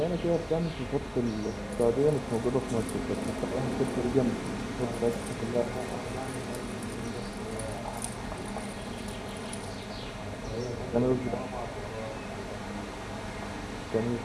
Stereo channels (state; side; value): identical; both; correlation 1.00